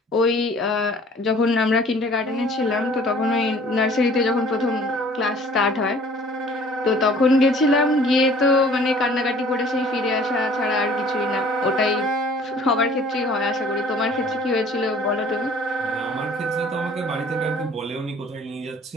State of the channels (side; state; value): both; normal; correlation 0.52